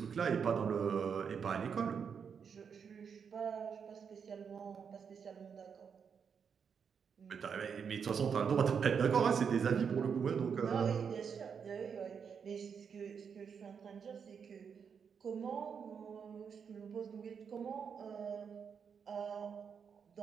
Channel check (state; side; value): quieter; left; 6.7 dB